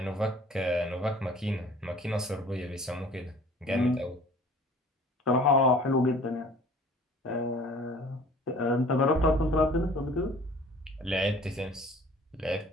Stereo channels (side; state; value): both; normal; correlation 0.49